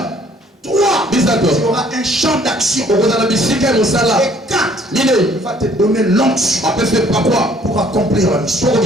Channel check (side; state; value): both; normal; correlation 0.60